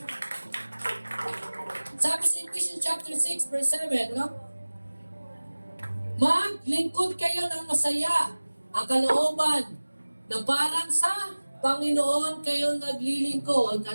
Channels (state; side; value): inverted; both; correlation -1.00